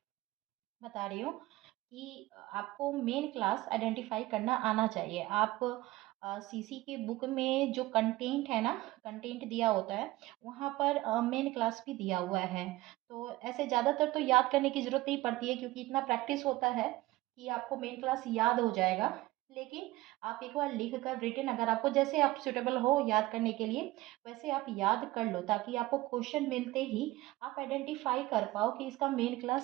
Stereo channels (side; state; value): left; quieter; 18.4 dB